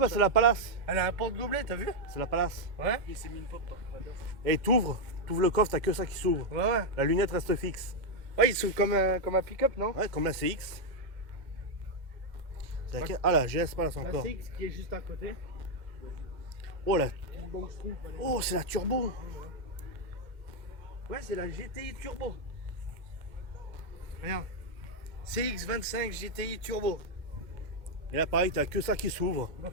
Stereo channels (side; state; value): left; late; 2.0 ms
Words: c'est la Palace. Elle a un porte-gobelet, t'as vu? C'est la Palace. Ouais. Il s'est mis une pop par Et t'ouvres le coffre, t'as que ça qui s'ouvre. Ouais, ouais. La lunette reste fixe. Ouais, ils sont comme un pick-up, non? Ouais, comme la CX. C'est laquelle? Ah la GS Palace La encore. CX qui est juste à côté. Oh la. Une banque Stroop, elle est- Oh, c'est la turbo. Ouais, c'est la GTI Turbo. Regarde. CX25 GTI Turbo. Et là pareil, t'as que ça qui s'ouvre.